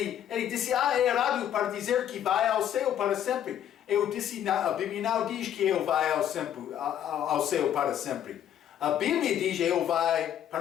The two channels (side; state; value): right; quieter; 10.4 dB